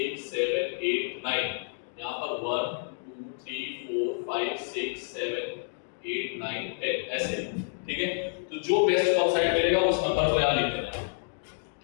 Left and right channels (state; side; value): silent; right; digital silence